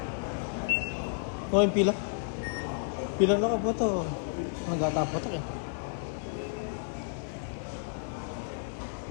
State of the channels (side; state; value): right; silent; 57 dB below the other